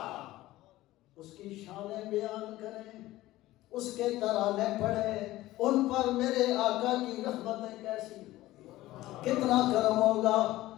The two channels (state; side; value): quieter; right; 16.6 dB